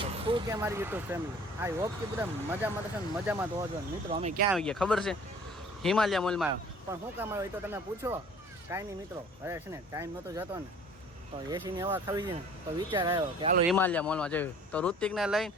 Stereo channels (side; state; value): both; normal; correlation 0.50